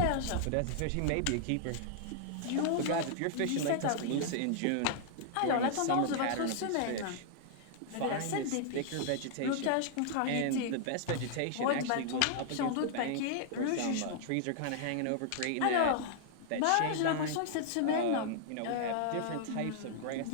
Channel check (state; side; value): different; both; correlation -0.01